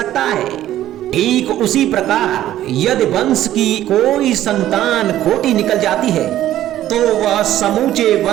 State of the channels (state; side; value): quieter; left; 13.0 dB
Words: है। ठीक उसी प्रकार यदि वंश की कोई संतान खोटी निकल जाती है तो वह समूचे